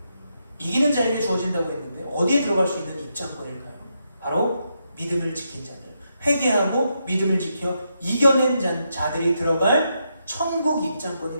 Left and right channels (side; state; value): both; inverted; correlation -0.82